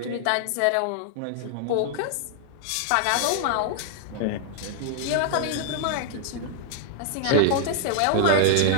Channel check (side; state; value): both; different; correlation -0.01